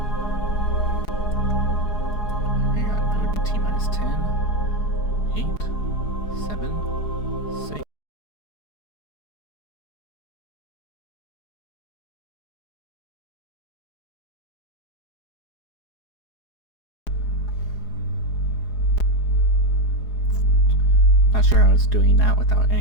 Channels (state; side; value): late; right; 4.8 ms